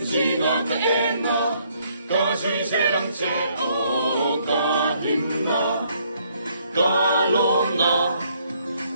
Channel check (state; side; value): inverted; both; correlation -0.68